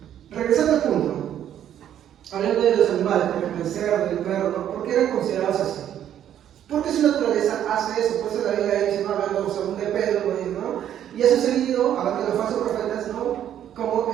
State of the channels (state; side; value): quieter; left; 10.5 dB